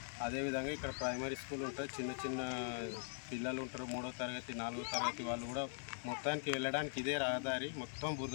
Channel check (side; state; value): right; silent; digital silence